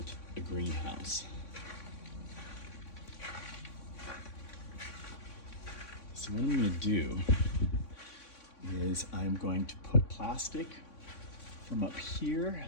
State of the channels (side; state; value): right; late; 3.6 ms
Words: a greenhouse. So what I'm going to do is I'm going to put plastic from up here